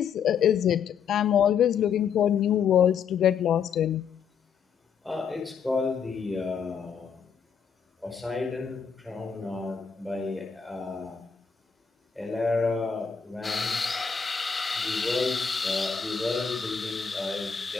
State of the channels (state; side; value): quieter; right; 6.8 dB